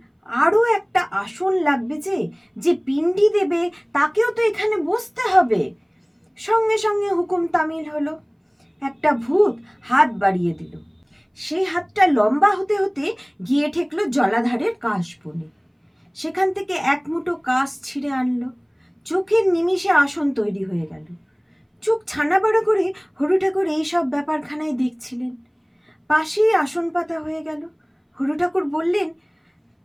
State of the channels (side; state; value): both; identical; correlation 1.00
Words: আরো একটা আসন লাগবে, যে পিণ্ডি দেবে তাকেও তো এখানে বসতে হবে। সঙ্গে সঙ্গে হুকুম তামিল হলো। একটা ভূত হাত বাড়িয়ে দিল। সেই হাতটা লম্বা হতে হতে গিয়ে ঠেকলো জলাধারের কাশ বনে। সেখান থেকে এক মুঠো কাশ ছিঁড়ে আনলো। চোখের নিমিষে আসন তৈরি হয়ে গেল। চোখ ছানা বড় করে হরু ঠাকুর এইসব ব্যাপারখানায় দেখছিলেন। পাশেই আসন পাতা হয়ে গেল। হরু ঠাকুর বললেন,